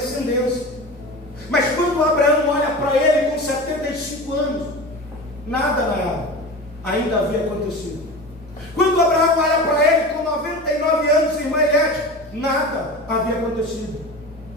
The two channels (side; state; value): both; normal; correlation 0.31